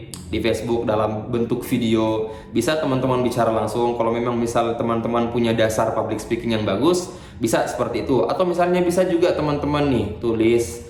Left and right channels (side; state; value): both; identical; correlation 1.00